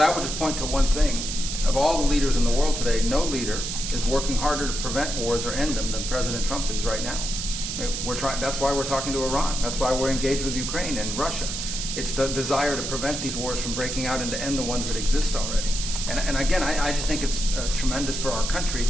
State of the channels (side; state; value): right; noise; hiss, 4 dB below the sound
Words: would just point to one thing. Of all the leaders in the world today, no leader is working harder to prevent wars or end them than President Trump is right now. We're trying. That's why we're talking to Iran. That's why we're engaged with Ukraine and Russia. It's the desire to prevent these wars from breaking out and to end the ones that exist already. And again, I just think it's tremendous for our country